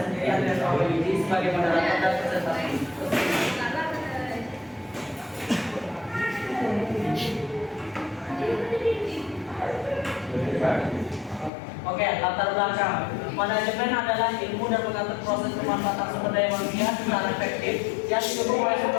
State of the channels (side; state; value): right; drops out; at 11.5 s